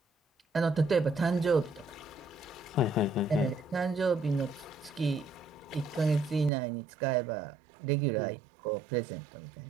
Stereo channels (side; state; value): left; drops out; at 6.5 s